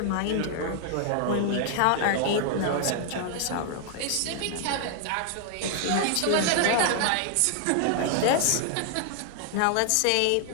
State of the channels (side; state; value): both; different; correlation 0.00